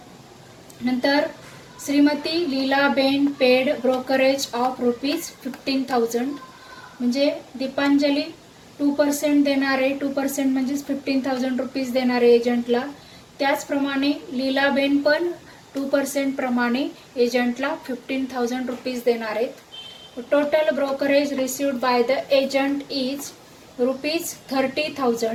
नंतर Shrimati Leelaben paid brokerage of rupees 15,000 म्हणजे दीपांजली 2% देणार आहे. 2% म्हणजेच 15,000 रुपीज देणार आहे एजंटला. त्याचप्रमाणे लीलाबेन पण 2% प्रमाणे एजंटला 15,000 रुपीज देणार आहेत. Total brokerage received by the agent is rupees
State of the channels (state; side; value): identical; both; correlation 1.00